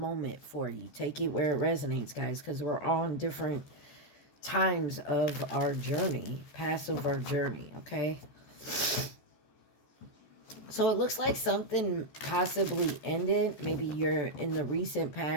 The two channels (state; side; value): late; right; 14 ms